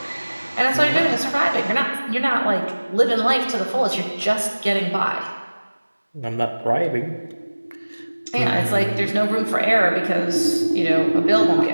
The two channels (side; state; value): both; inverted; correlation -1.00